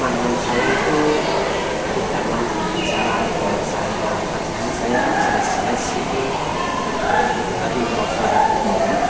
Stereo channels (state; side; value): identical; both; correlation 1.00